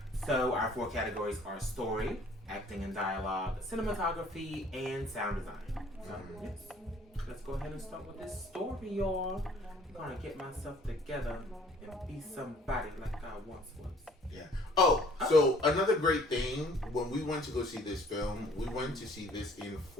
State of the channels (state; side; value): normal; both; correlation 0.56